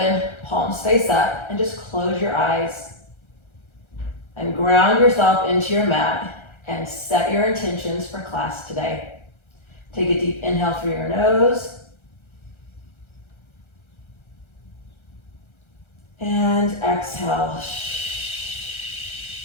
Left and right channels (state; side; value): late; right; 1.3 ms